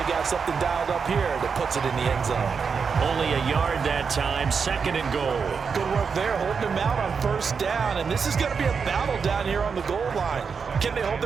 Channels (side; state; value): left; quieter; 5.8 dB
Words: got something dialed up here that puts it in the end zone. Only a yard that time, 2nd and goal. Good work there, holding them out on 1st down, and this is going to be a battle down here on the goal line. Can they hold